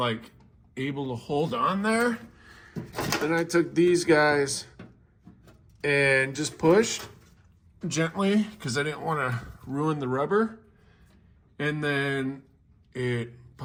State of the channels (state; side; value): identical; both; correlation 1.00